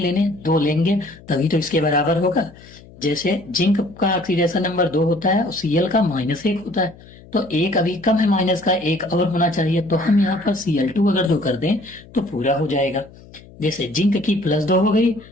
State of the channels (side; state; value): left; noise; hum, 22 dB below the sound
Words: 2 लेंगे, तभी तो इसके बराबर होगा। जैसे जिंक का ऑक्सीडेशन नंबर 2 होता है और Cl का -1 होता है, तो एक अभी कम है, माइनस का एक और होना चाहिए। तो हम यहाँ पर Cl2 अगर जो कर दें तो पूरा हो जाएगा। जैसे जिंक की +2 हो गई